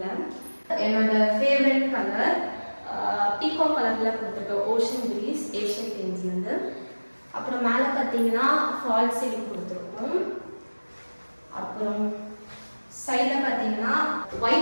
என்னோட ஃபேவரட் கலர் பீகோ கலரில் கொடுத்துருக்கேன், ஓஷன் ப்ரீஸ் ஏஷியன் பெயிண்ட்ஸ்லேருந்து. அப்புறம் மேலே பார்த்தீங்கன்னா ஃபால் சீலிங் கொடுத்துருக்கோம். அப்புறம் சைடில் பார்த்தீங்கன்னா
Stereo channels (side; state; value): both; inverted; correlation -1.00